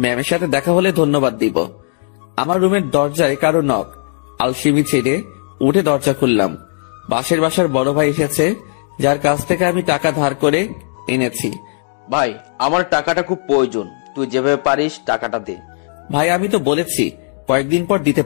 ম্যামের সাথে দেখা হলে ধন্যবাদ দিব। আমার রুমের দরজায় কারো নক। আলসিমি ছেড়ে উঠে দরজা খুললাম। বাসার বড় ভাই এসেছে, যার কাছ থেকে আমি টাকা ধার করে এনেছি। ভাই আমার টাকাটা খুব প্রয়োজন, তুই যেভাবে পারিস টাকাটা দে। ভাই আমি তো বলেছি কয়েকদিন পর দিতে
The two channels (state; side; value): silent; right; digital silence